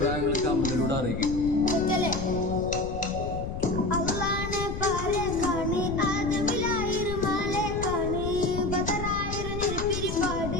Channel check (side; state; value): left; noise; rumble, 6 dB below the sound